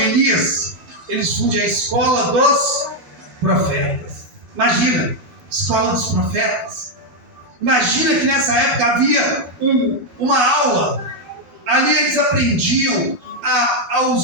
eles fundem a escola dos profetas. Imagina, escola dos profetas. Imagina que nessa época havia uma aula. Ali eles aprendiam a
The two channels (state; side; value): late; left; 12 ms